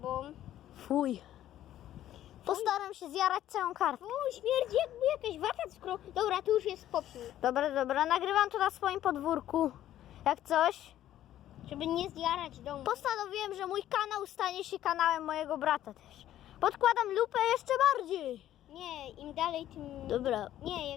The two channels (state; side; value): quieter; right; 12.5 dB